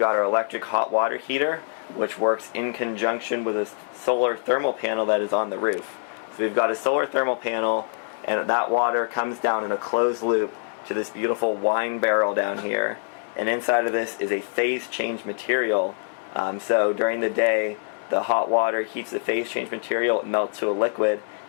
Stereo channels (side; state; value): right; silent; 62 dB below the other